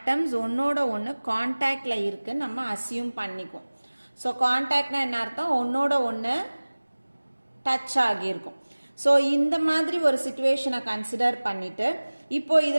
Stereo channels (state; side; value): inverted; both; correlation -1.00